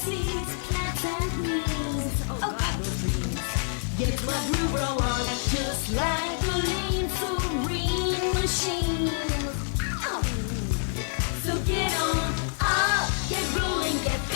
seeds, plants and weeds. Oh God, those dreams. Get my groove roll on, just like a lean, serene machine. Oh. So get on up, get rolling, get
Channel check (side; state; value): right; silent; 60 dB below the other